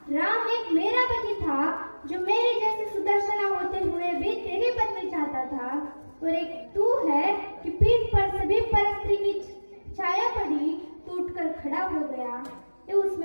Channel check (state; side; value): inverted; both; correlation -1.00